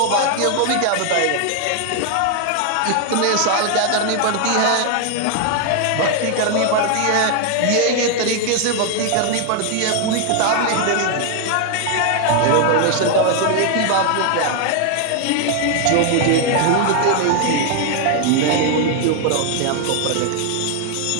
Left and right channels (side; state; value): both; different; correlation 0.00